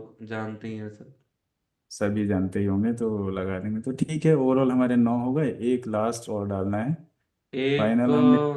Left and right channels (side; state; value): both; identical; correlation 1.00